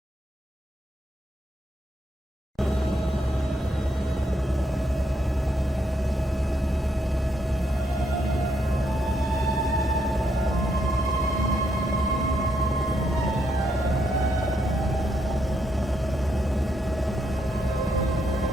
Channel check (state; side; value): normal; both; correlation 0.77